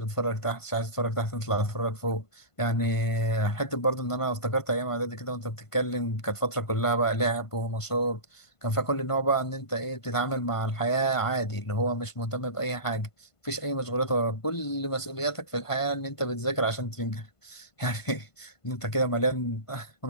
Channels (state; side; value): late; right; 1.5 ms